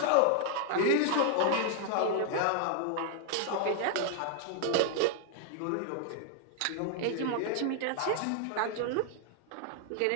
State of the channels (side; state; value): both; different; correlation 0.00